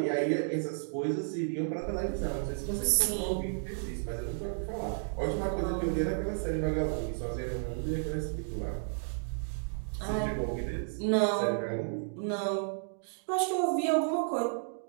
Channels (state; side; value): silent; left; digital silence